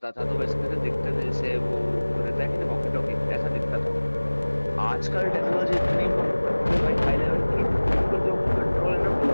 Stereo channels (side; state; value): both; inverted; correlation -1.00